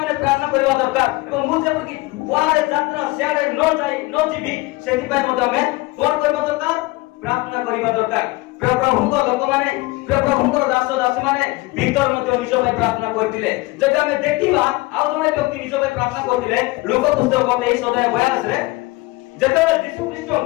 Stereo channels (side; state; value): right; quieter; 21.8 dB